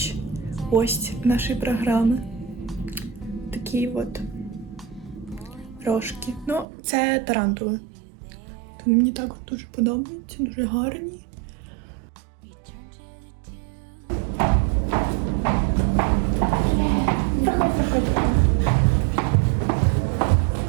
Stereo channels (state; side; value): drops out; left; at 6.7 s